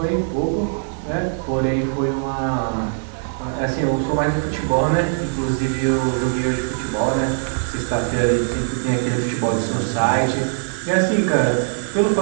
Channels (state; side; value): silent; left; 65 dB below the other